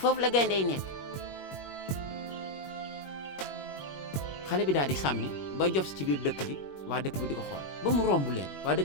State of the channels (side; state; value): right; late; 21 ms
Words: la gaynde yi nekk xale bi daal di sàmmi ba jof ci biir dëkk bi waa dëkk bi di ko xool ba mu romb leen waa